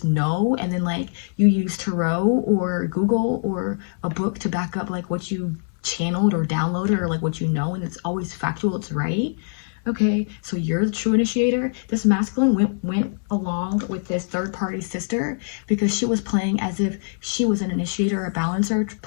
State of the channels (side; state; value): right; silent; 63 dB below the other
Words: know, and then like, you use tarot or Google or a book to back up like what you channeled or downloaded or like what you know, and it's always factual, it's right, Okay, so you're the true initiator. This masculine went along with this third party sister because she was playing as if she was an initiator or a balancer,